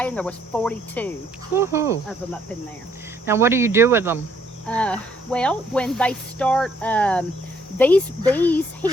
and there was 42 of them up in there. Now what do you do with them? Well, when they start, these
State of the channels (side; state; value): both; normal; correlation 0.67